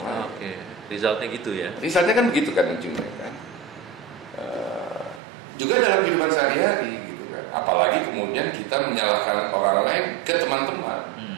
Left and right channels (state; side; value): drops out; left; at 5.2 s